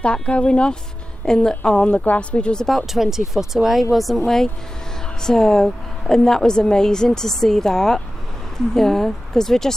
that going off on the grass, which was about 20 foot away, wasn't we? So, and that was amazing to see that. Mm-hmm. Yeah, because we're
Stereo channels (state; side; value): normal; both; correlation 0.95